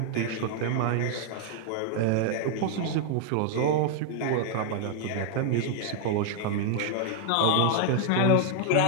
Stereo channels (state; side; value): different; both; correlation 0.00